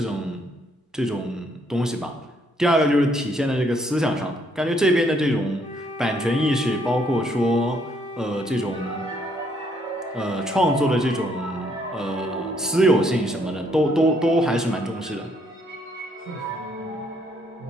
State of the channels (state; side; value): normal; both; correlation 0.69